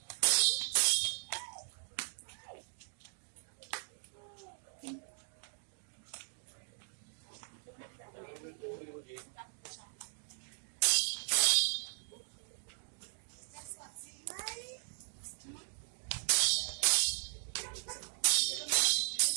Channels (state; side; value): silent; left; digital silence